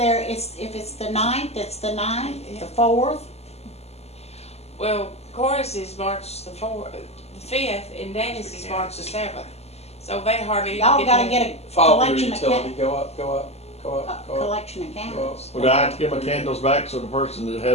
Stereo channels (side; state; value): right; late; 0.30 ms